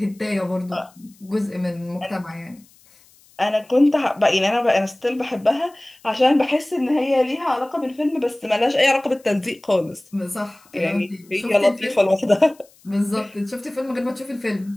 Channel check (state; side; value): noise; left; hiss, 29 dB below the sound